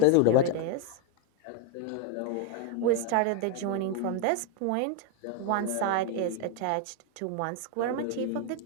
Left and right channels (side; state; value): both; different; correlation 0.01